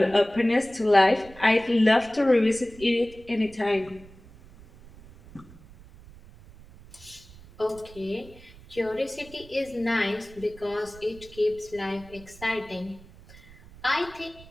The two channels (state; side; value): noise; right; rumble, 21 dB below the sound